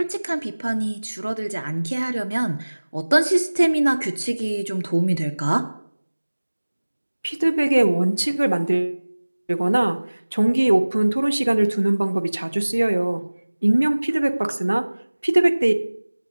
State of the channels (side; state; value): both; inverted; correlation -1.00